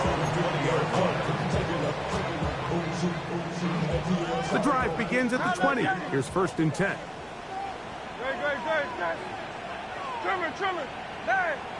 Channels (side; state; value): both; identical; correlation 1.00